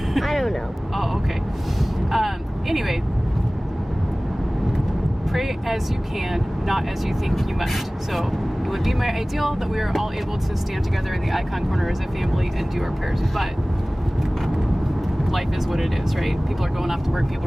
don't know. Oh, okay. Anyway, pray as you can, not as you think you must. So it would be my ideal that we are all able to stand together in the icon corner as a family and do our prayers, but life is what it is, right? People are going off to work, people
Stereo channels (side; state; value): both; normal; correlation 0.98